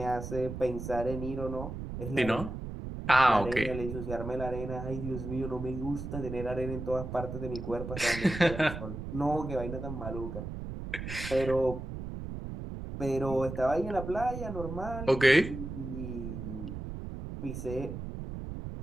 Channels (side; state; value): right; noise; rumble, 7 dB below the sound